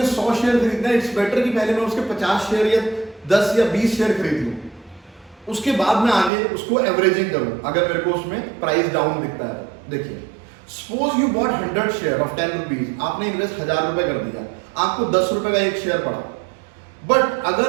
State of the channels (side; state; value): left; drops out; at 6.3 s